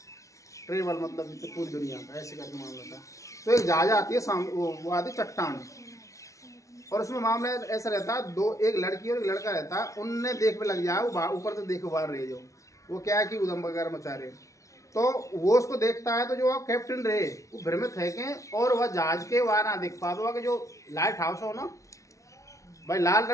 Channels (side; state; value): right; late; 0.15 ms